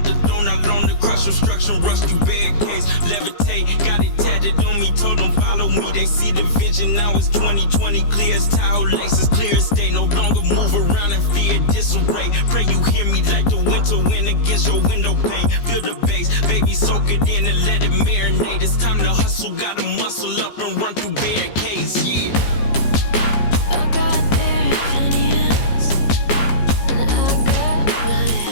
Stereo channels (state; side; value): late; right; 15 ms